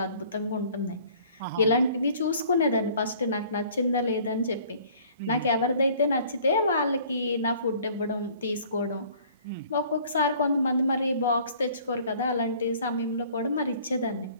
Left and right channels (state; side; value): inverted; both; correlation -0.53